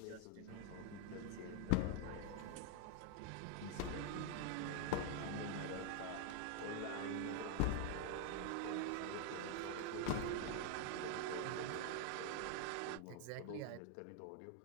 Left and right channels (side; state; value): both; different; correlation 0.01